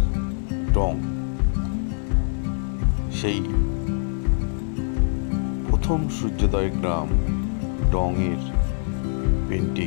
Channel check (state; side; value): silent; right; 56 dB below the other